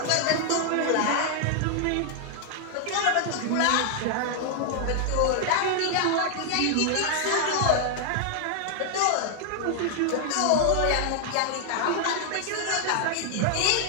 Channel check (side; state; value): both; different; correlation 0.00